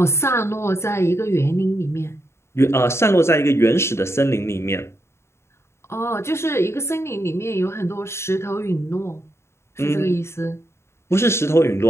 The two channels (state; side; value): late; right; 0.13 ms